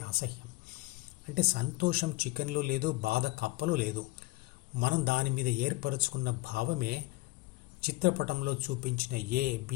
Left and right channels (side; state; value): right; quieter; 21.0 dB